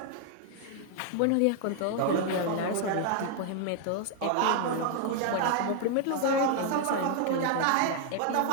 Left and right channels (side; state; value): both; different; correlation 0.00